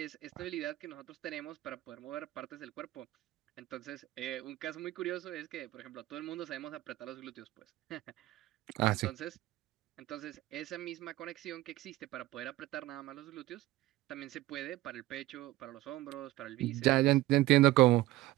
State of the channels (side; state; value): left; quieter; 17.2 dB